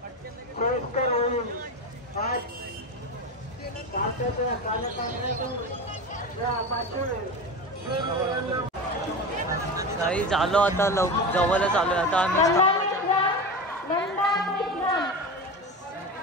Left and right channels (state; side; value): normal; both; correlation 0.25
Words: सोयीस्कर होईल आज भारताच्या काही झालो आता जवळच आलोय आता आम्ही